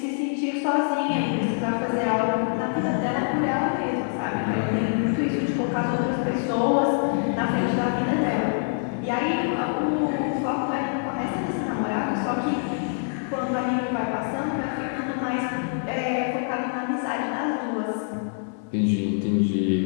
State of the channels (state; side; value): silent; right; 62 dB below the other